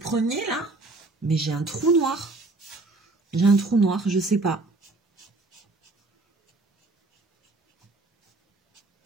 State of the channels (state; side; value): quieter; left; 3.2 dB